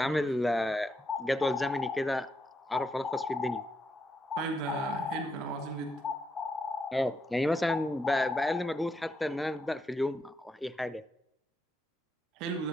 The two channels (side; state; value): both; normal; correlation 0.81